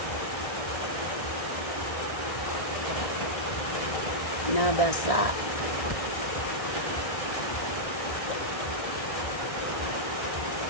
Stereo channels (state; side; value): late; right; 1.6 ms